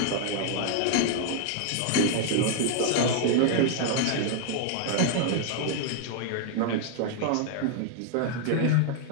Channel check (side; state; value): both; different; correlation 0.00